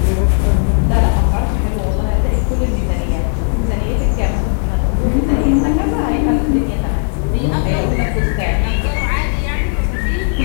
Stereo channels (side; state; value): right; silent; 62 dB below the other